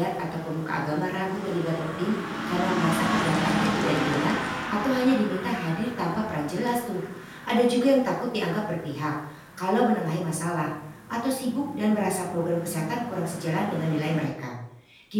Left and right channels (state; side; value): identical; both; correlation 1.00